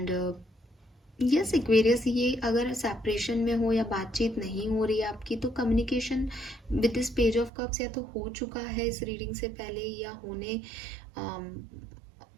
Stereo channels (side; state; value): left; drops out; at 7.5 s